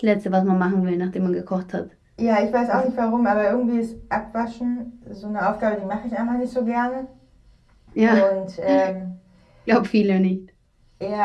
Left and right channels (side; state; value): both; identical; correlation 1.00